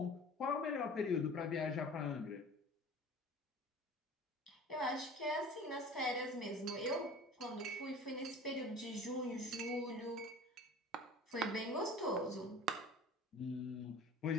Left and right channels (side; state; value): both; normal; correlation 0.42